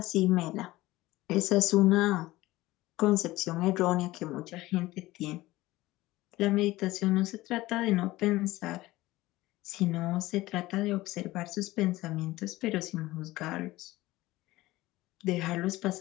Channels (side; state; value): right; quieter; 18.1 dB